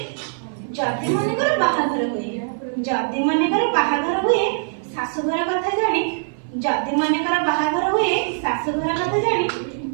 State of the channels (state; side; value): silent; left; 56 dB below the other